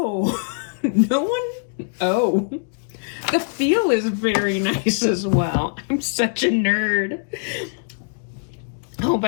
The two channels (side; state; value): right; silent; digital silence